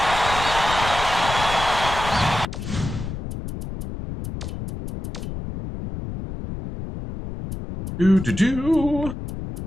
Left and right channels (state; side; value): noise; left; rumble, 7 dB below the sound